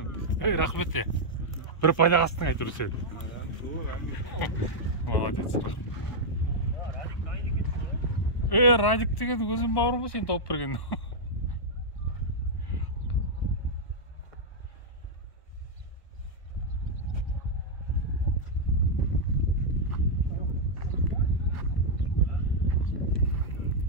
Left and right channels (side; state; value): right; late; 1.0 ms